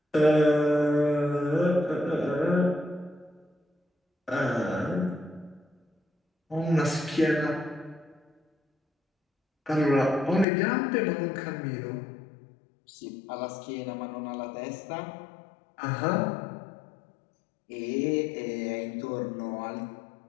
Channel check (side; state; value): right; drops out; at 10.5 s